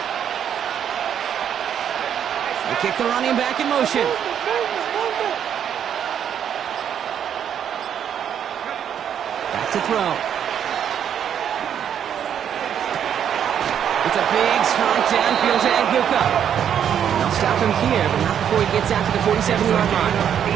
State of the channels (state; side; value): quieter; left; 8.9 dB